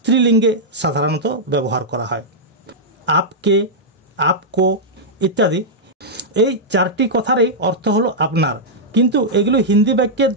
সাধারণত ব্যবহার করা হয়। আপকে, আপকো ইত্যাদি এই চারটি কথারই অর্থ হলো আপনার, কিন্তু এগুলো হিন্দি বাক্যের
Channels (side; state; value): both; normal; correlation -0.07